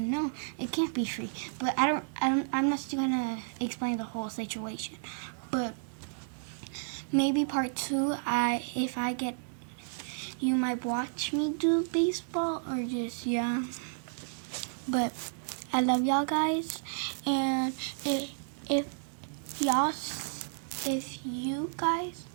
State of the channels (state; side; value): silent; left; digital silence